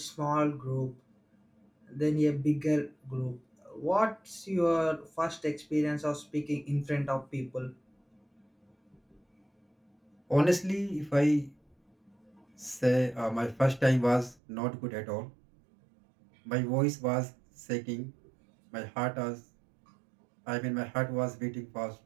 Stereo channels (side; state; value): left; drops out; at 14.4 s